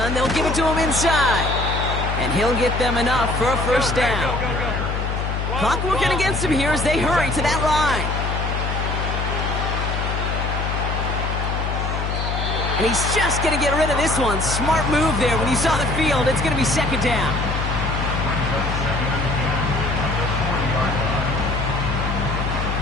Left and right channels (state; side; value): noise; left; hum, 2 dB below the sound